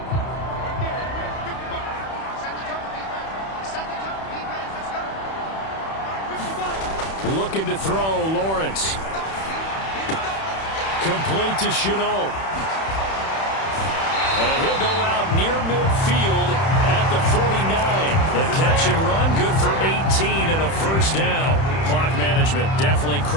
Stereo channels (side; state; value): right; late; 31 ms